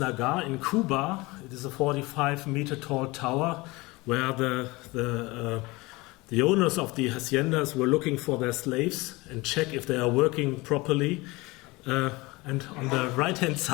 in Cuba. It is a 45-meter tall tower where the owners of the haciendas were looking for their slaves and check if they are working properly. And on the right-hand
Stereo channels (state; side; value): quieter; right; 22.8 dB